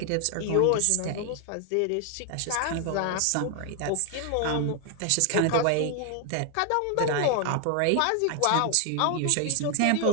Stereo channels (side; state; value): both; different; correlation 0.00